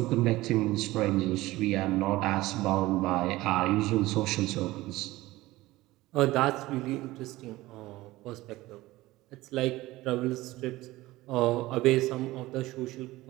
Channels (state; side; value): quieter; left; 18.3 dB